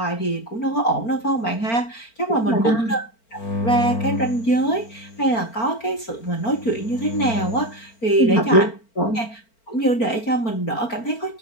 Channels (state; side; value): late; right; 4.4 ms